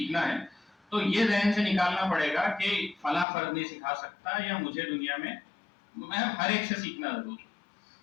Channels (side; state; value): right; drops out; at 3.2 s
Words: ہے تو یہ ذہن سے نکالنا پڑے گا کہ فلاں فرد نہیں سکھا سکتا, یا مجھے دنیا میں ہر ایک سے سیکھنا ضروری.